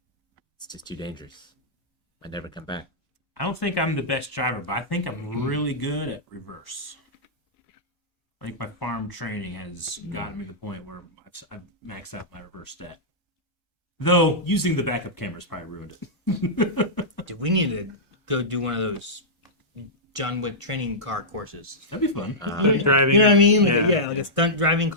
It's just too dangerous. I never come back. I don't think I'm the best driver, but I think I'm really good at reverse. I think my farm training has gotten me to the point where I've maxed out my reverse stat. Though, using the backup cameras probably ruined it. Dude, we need to go do one of those John Wick training car courses. That'd be fun. Driving. You know what I mean? Like, Yeah. yeah, like a stunt driving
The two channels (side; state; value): both; normal; correlation -0.12